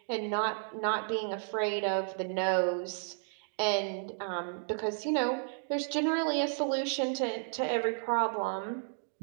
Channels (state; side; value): silent; left; digital silence